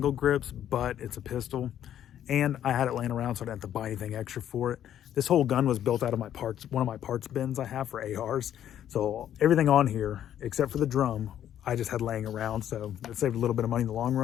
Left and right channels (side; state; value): right; quieter; 10.7 dB